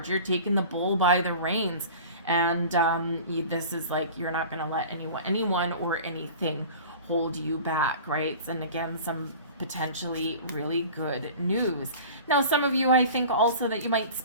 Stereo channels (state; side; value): inverted; both; correlation -0.40